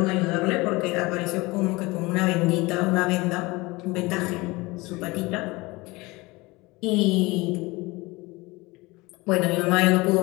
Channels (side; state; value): right; quieter; 22.9 dB